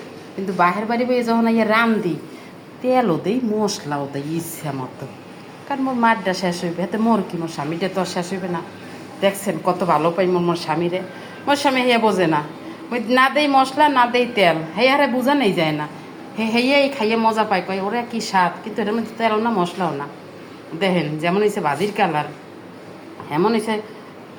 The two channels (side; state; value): both; identical; correlation 1.00